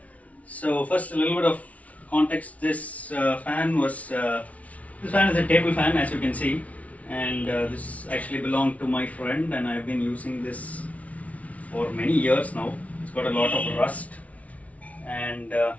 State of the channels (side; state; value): right; late; 0.067 ms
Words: So first, a little bit of context. This fan is a table fan, as you can see, and this actually belonged to my friend, and I've been using this for many years now. It's got a lot of rust, and